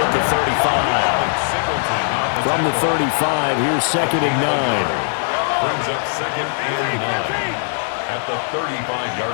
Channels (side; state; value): right; silent; 65 dB below the other